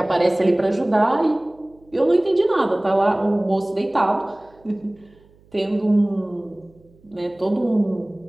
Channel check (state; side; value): noise; right; hum, 30 dB below the sound